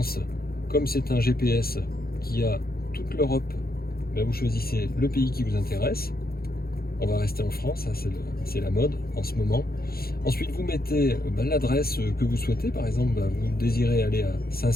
comme c'est un GPS qui a toute l'Europe, ben vous choisissez le pays qui vous intéresse. On va rester en France, c'est la mode en ce moment. Ensuite, vous mettez l'adresse que vous souhaitez. Par exemple, vous désirez aller à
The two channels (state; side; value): late; right; 0.44 ms